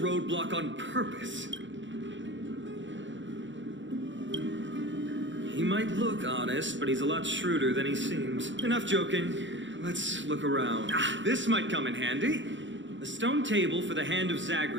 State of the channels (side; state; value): left; late; 0.54 ms